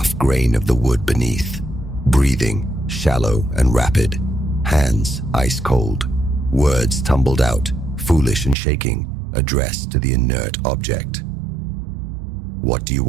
grain of the wood beneath. Breathing, shallow and rapid. Hands ice cold. Words tumbled out, foolish and shaking, addressed to the inert object. "What do you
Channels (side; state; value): left; drops out; at 8.6 s